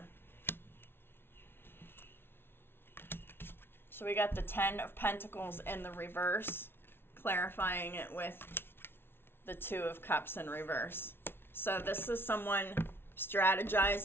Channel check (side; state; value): right; late; 0.11 ms